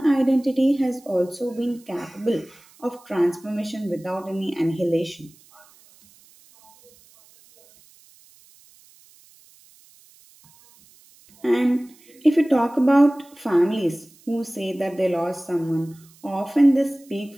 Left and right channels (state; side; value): noise; right; hiss, 28 dB below the sound